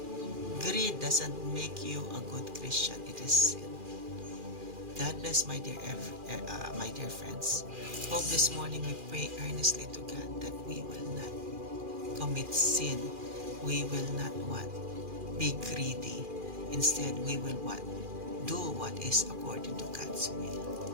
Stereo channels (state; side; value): late; left; 2.4 ms